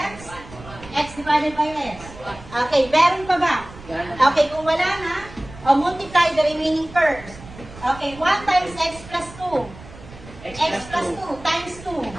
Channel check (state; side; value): noise; right; rumble, 17 dB below the sound